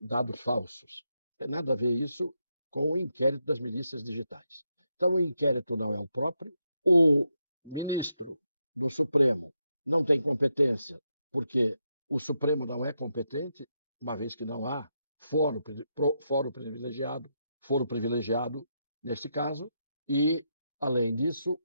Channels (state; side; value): inverted; both; correlation -0.82